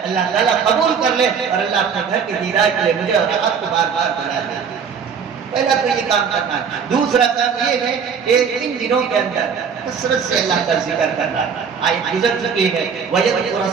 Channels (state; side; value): quieter; left; 6.5 dB